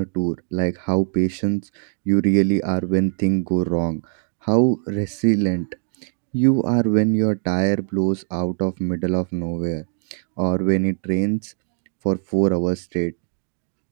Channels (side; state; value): left; silent; digital silence